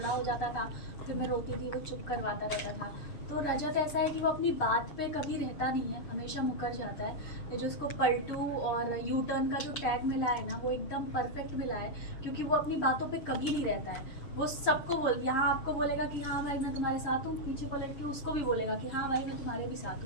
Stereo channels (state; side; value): late; right; 6.8 ms